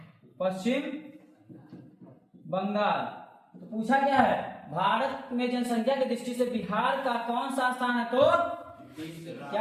पश्चिम बंगाल। तो पूछा क्या है, भारत में जनसंख्या की दृष्टि से बिहार का कौन सा स्थान है, तो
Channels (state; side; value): identical; both; correlation 1.00